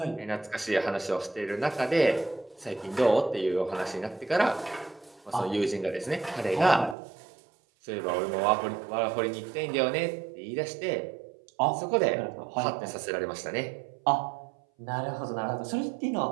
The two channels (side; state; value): left; drops out; at 7.0 s